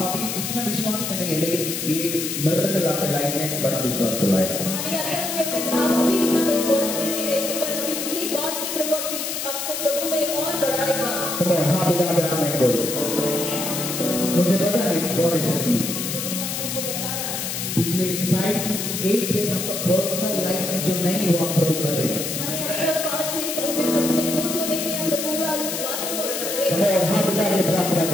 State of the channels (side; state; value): left; noise; hiss, 3 dB below the sound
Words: अभी इतना विश्वास करेंगे लेकिन ये मिरेकल आपके लाइफ में बड़ा विश्वास तो लाएगा मुझे पता है गॉड इज पिछले 5 to 8 years आपका पर्सनल लाइफ में जो नहीं हुआ प्रभु करेगा हाथ उठा के प्रार्थना